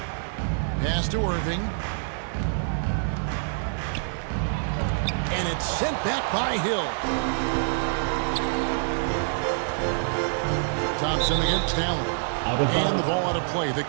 Pass to Irving. And it's sent back by Hill. Thompson against Allen. And the ball out of play. The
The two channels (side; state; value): left; silent; 61 dB below the other